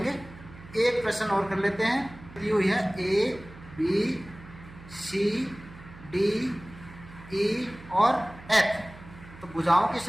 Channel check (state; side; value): noise; right; hum, 18 dB below the sound